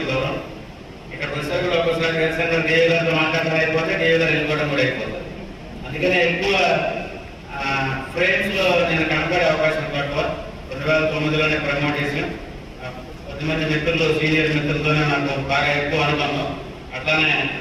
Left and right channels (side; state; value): both; identical; correlation 1.00